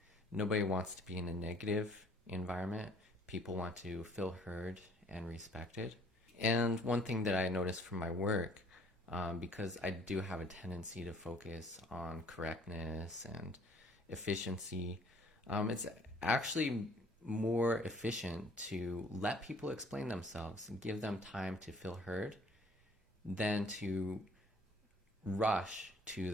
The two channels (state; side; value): normal; both; correlation 0.57